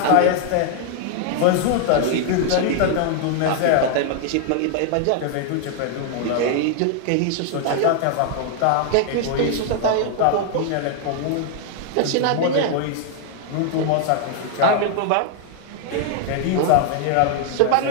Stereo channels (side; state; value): both; different; correlation 0.00